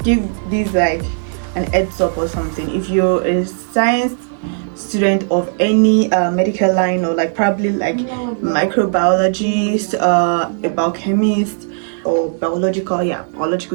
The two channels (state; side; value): silent; left; digital silence